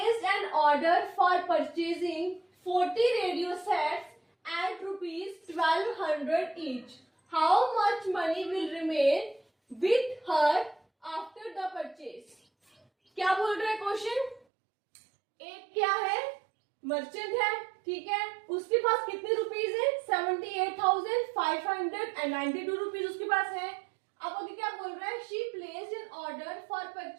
an order for purchasing 40 radio sets at ₹1,200 each. How much money will remain with her after the purchase? क्या बोल रहा है क्वेश्चन? एक क्या है, मर्चेंट है, ठीक है, उसके पास कितने रुपीज है? 78,592 रुपीज उसके पास है। अब आगे क्या बोल रहा है? She placed an order for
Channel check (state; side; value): drops out; left; at 14.4 s